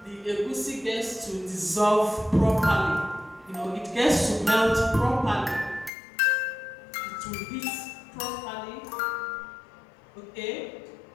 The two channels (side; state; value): right; drops out; at 5.9 s